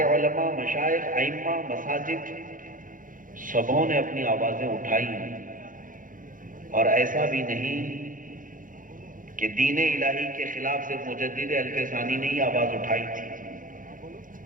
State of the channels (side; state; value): left; late; 0.39 ms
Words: علماء، مشائخ، ائمہ، مساجد، سبوں نے اپنی آوازیں اٹھائی، اور ایسا بھی نہیں کہ دین الہی کے خلاف صرف مجدد الف ثانی نے ہی آواز اٹھائی تھی۔